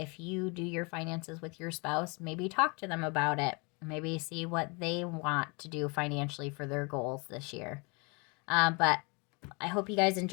you do your finances with your spouse, maybe talk to them about it. Maybe see what they want to do financially for their goals this year. But I hope you guys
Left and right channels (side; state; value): right; quieter; 30.5 dB